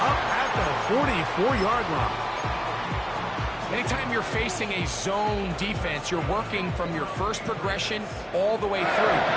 up at the 44-yard line. Anytime you're facing a zone defense, you're working from your first progression all the way through.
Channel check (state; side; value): identical; both; correlation 1.00